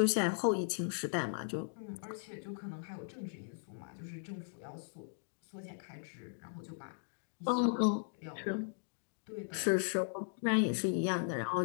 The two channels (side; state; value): right; silent; digital silence